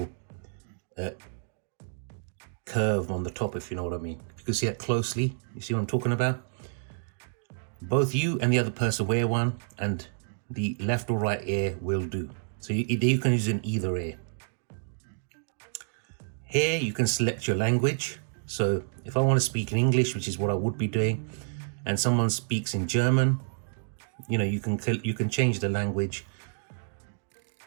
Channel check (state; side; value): silent; left; digital silence